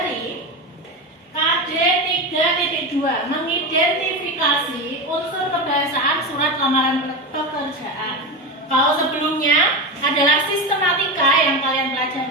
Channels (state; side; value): normal; both; correlation 0.19